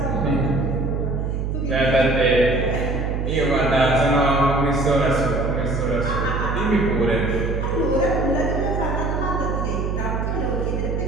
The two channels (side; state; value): right; noise; hum, 1 dB below the sound